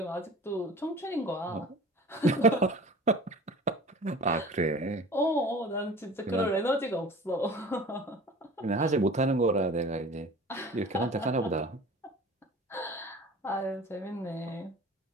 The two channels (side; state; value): both; normal; correlation 0.42